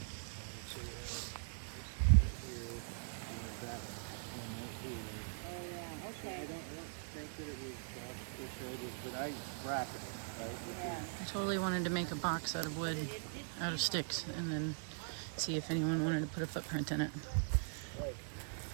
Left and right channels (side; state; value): left; silent; 50 dB below the other